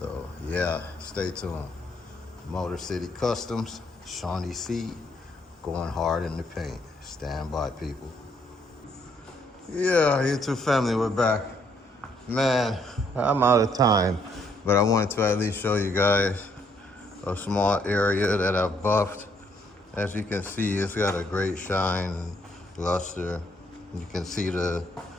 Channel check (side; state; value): both; normal; correlation 0.69